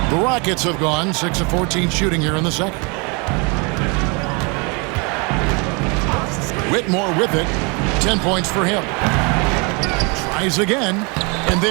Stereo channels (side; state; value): left; quieter; 31.3 dB